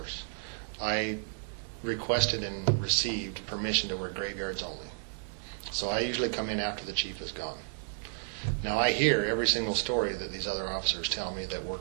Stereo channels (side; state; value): left; silent; digital silence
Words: I requested and received permission to work graveyards only. So I usually come in after the chief is gone. Now I hear every single story that these other officers tell me that